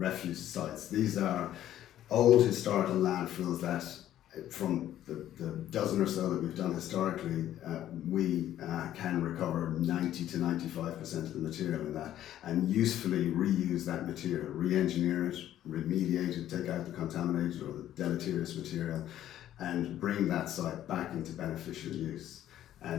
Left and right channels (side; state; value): right; quieter; 12.2 dB